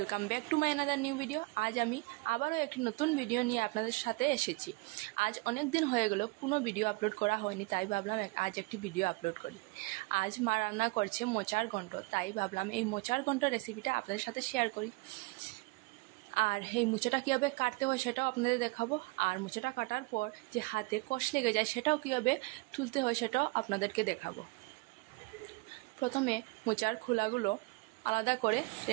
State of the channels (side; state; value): left; quieter; 25.5 dB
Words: back to my another new video. আজ আমি আবারও একটি নতুন ভিডিও নিয়ে আপনাদের সাথে এসেছি। আজ অনেক দিন হয়ে গেল কোনো ভিডিও আপলোড করা হয়নি, তাই ভাবলাম আজ একটি ভিডিও আপলোড করি। আজ মা রান্না করছে মোচার ঘন্ট, তাই ভাবলাম এই মোচার ঘন্ট রেসিপিটা আপনাদের সাথে শেয়ার করি। আর এই মোচাটা কীভাবে কাটতে হয় সেটাও আপনাদের দেখাবো, আর মোচাটা কাটার পর যে হাতে কষ লেগে যায় সেটাও কীভাবে তুলতে হয় সেটাও আপনাদেরকে দেখাবো। প্রথমে মোচার খোলাগুলো আলাদা করে